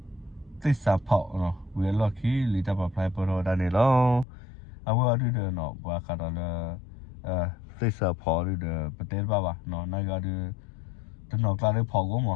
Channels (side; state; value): right; drops out; at 4.2 s